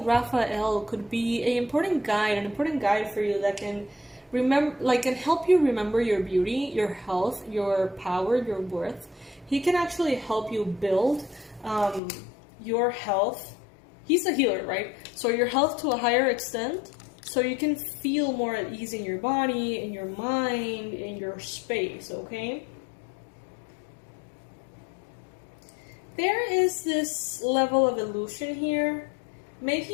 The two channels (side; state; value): right; drops out; at 12.0 s